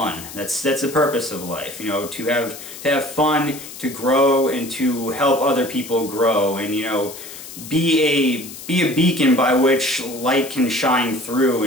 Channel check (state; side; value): noise; left; hiss, 13 dB below the sound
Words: That's the purpose of life, to have fun, to grow, and to help other people grow, and be a beacon by which light can shine through,